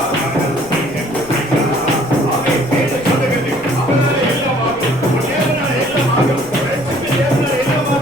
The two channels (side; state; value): left; noise; rumble, 21 dB below the sound